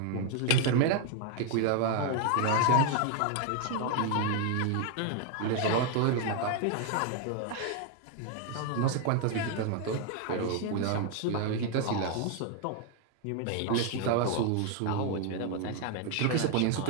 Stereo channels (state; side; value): different; both; correlation 0.01